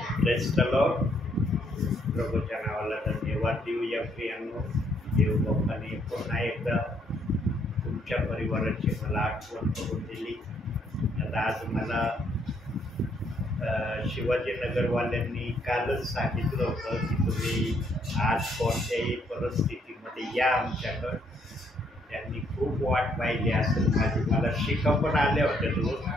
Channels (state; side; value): normal; both; correlation 0.70